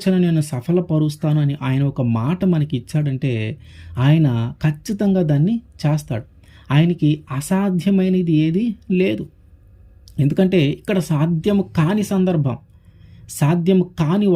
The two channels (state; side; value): identical; both; correlation 1.00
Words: నేను సఫలపరుస్తాను అని ఆయన ఒక మాట మనకి ఇచ్చాడంటే, ఆయన ఖచ్చితంగా దాన్ని చేస్తాడు. ఆయనకి అసాధ్యమైనది ఏది లేదు. ఎందుకంటే ఇక్కడ సాధ్యము కాని సందర్భం, సాధ్యం కాని